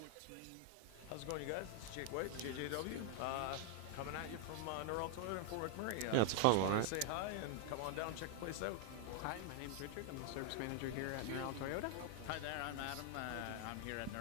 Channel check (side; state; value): both; different; correlation 0.00